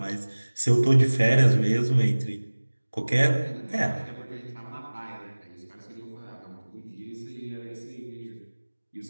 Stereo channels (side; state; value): both; inverted; correlation -1.00